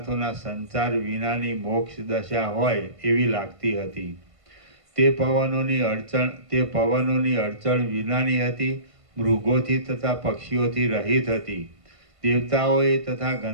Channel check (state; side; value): late; left; 1.5 ms